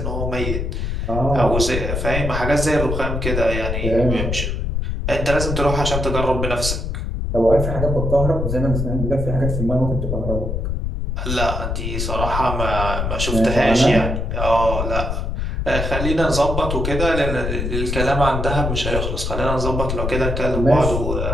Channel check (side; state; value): left; noise; rumble, 2 dB below the sound